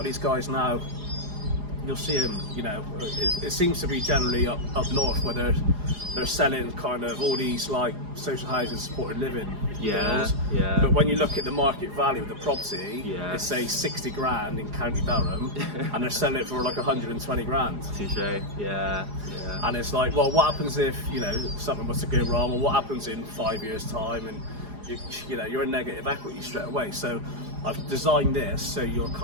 these guys now, you'll see them, you know, it seems to be generally up north, where they're selling kind of all these like social housing supported living deals. But when you look at the market value of the property, it's say 60 grand in County Durham, and they're selling it for like 120 grand. Touche. And it's like, well, what happens if, you know, something was to go wrong, or what happens in 5 years' time, and you know, you're in negative equity straight away. So I've designed this so you're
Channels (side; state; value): left; late; 4.9 ms